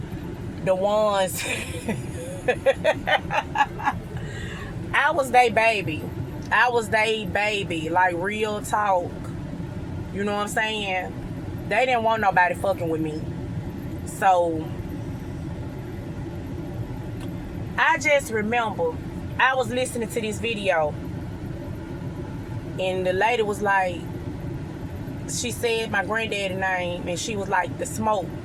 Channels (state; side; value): identical; both; correlation 1.00